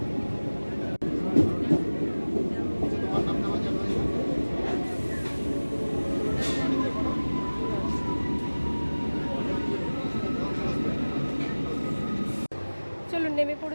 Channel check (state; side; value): inverted; both; correlation -1.00